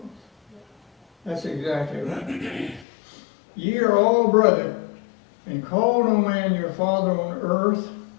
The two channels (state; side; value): drops out; right; at 2.9 s